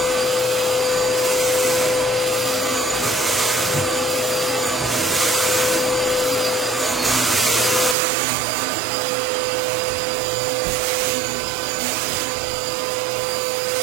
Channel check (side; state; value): left; drops out; at 8.0 s